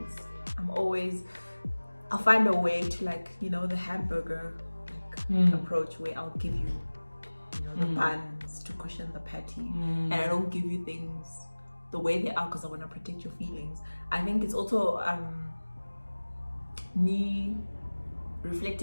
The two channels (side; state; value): both; inverted; correlation -1.00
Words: I'll find a way to, like, you know, the hamburger approach, where I'll give you, you know, the buns to cushion the patty, and I don't give you things the way they are because I want to protect your feelings. I think it's also me